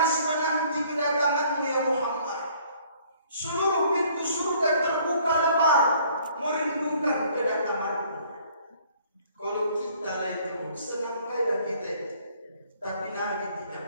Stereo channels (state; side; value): inverted; both; correlation -0.58